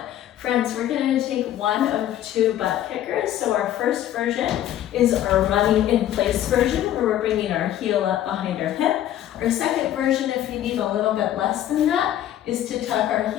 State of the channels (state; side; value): quieter; right; 12.1 dB